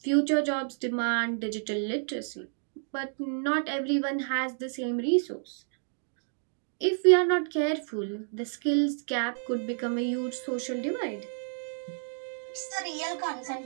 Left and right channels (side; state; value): left; silent; digital silence